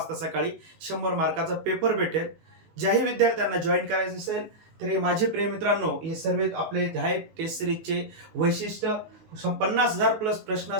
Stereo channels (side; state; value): left; late; 19 ms